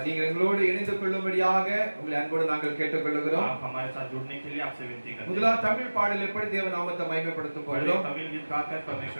நீங்கள் எங்களோடு இணைந்து கொள்ளும்படியாக உங்களை அன்போடு நாங்கள் கேட்டுக்கொள்கிறோம். आप हमारे साथ जुड़ने के लिए आपसे विनती करते हैं। முதலாவது தமிழ் பாடலை எப்படி தேவ நாமத்தை மகிமைப்படுத்தும் पहले போகிறோம். तमिल गीत गाकर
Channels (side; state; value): both; inverted; correlation -1.00